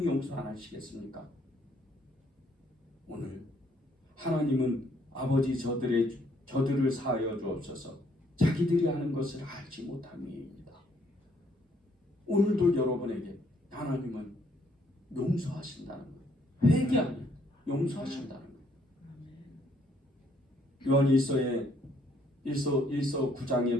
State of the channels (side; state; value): both; normal; correlation 0.68